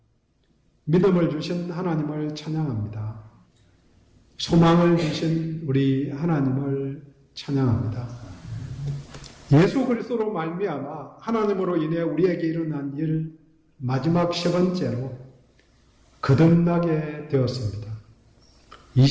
믿음을 주신 하나님을 찬양합니다. 소망을 주신 우리 하나님을 찬양합니다. 예수 그리스도로 말미암아 하나님으로 인해 우리에게 일어난 일 마지막 세 번째로 거듭나게 되었습니다.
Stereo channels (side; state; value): both; identical; correlation 1.00